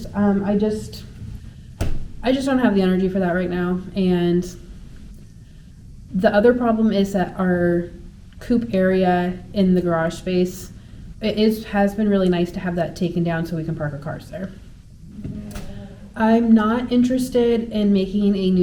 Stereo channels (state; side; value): identical; both; correlation 1.00